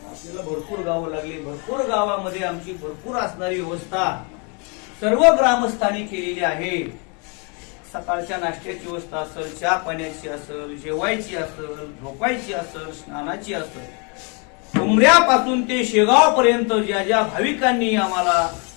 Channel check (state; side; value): quieter; right; 34.6 dB